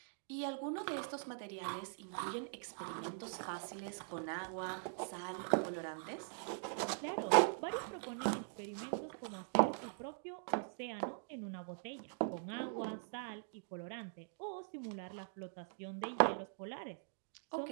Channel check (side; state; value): left; silent; digital silence